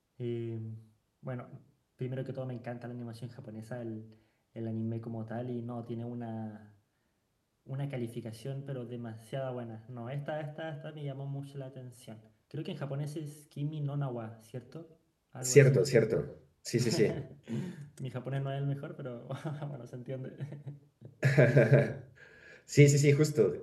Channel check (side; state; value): both; identical; correlation 1.00